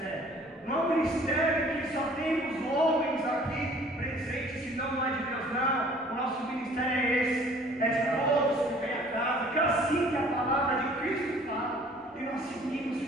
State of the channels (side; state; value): both; normal; correlation 0.53